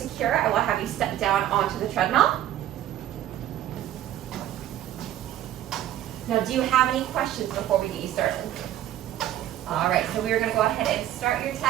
I will have you step down onto the treadmill. Now, do you have any questions before we get you started? All right, so we are going to go ahead and start your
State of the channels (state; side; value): quieter; left; 12.4 dB